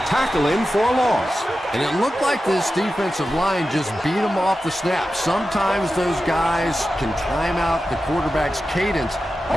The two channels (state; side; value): normal; both; correlation 0.92